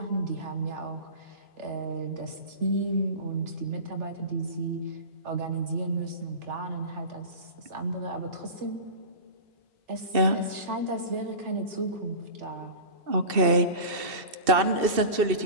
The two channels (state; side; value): late; left; 2.7 ms